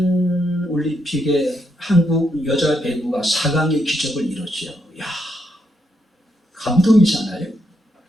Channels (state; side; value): normal; both; correlation 0.79